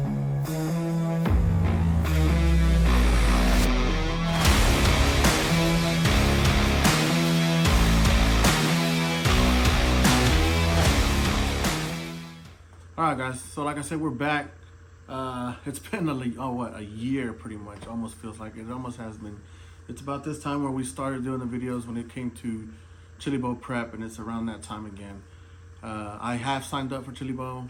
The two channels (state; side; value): identical; both; correlation 1.00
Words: All right, guys. So like I said, we're back. It's been a year pretty much. Almost feels like it almost has been. It's about this time where we started doing the videos when it came to Chili Bowl prep, and it's around that time again. I have signed up for Chili Bowl.